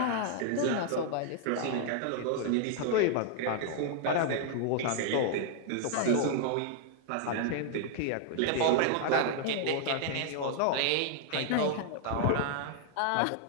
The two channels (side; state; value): both; different; correlation 0.00